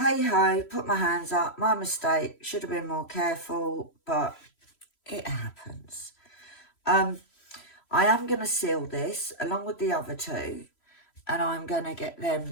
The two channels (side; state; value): right; late; 3.1 ms